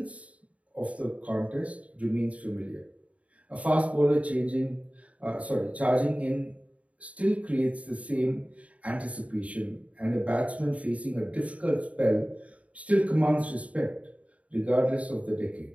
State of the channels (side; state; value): left; late; 0.067 ms